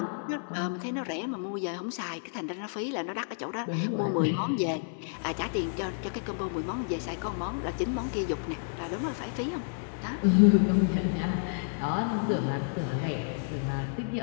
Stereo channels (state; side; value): silent; right; 58 dB below the other